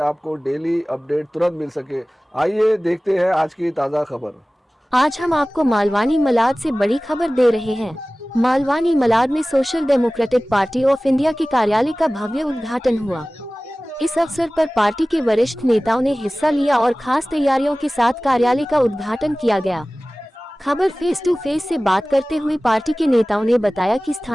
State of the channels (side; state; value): both; normal; correlation 0.98